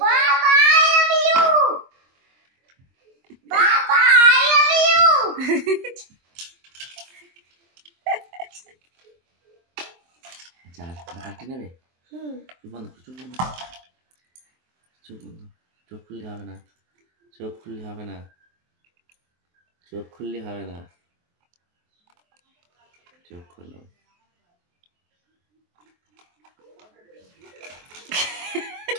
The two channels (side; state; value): left; late; 23 ms